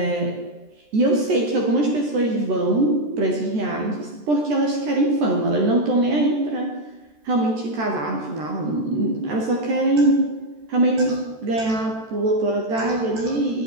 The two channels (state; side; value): late; left; 13 ms